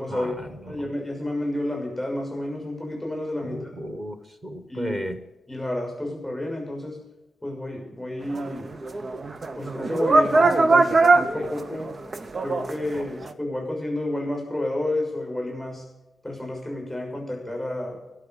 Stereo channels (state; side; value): normal; both; correlation 0.92